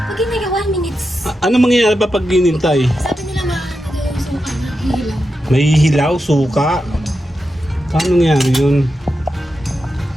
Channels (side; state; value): both; normal; correlation 0.89